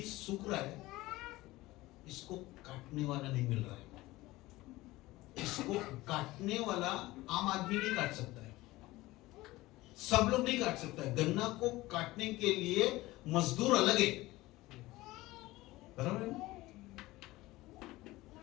सूख रहा है, इसको काटने वाला नहीं मिल रहा है। इसको काटने वाला आम आदमी नहीं काट सकता है, सब लोग नहीं काट सकता है। गन्ना को काटने के लिए मजदूर अलग है, बराबर है?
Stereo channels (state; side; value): quieter; right; 18.8 dB